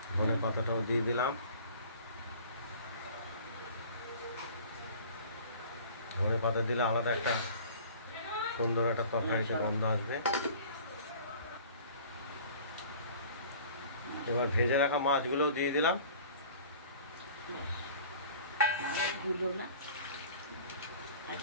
ধনে পাতাটাও দিয়ে দিলাম। ধনে পাতা দিলে আলাদা একটা সুন্দর একটা তরকারিতে গন্ধ আসবে। এবার ভেজে রাখা মাছগুলোও দিয়ে দিলাম। মাছগুলো না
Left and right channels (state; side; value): inverted; both; correlation -0.46